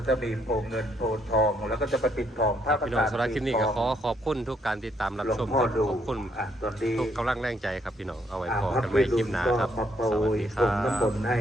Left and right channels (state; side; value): normal; both; correlation 0.71